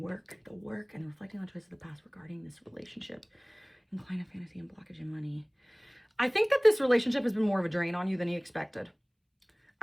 work and reflecting on choices of the past regarding this relationship. Incline to fantasy and blockage in money. I think that this relationship has been more of a drain on you than you expected.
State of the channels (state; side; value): identical; both; correlation 1.00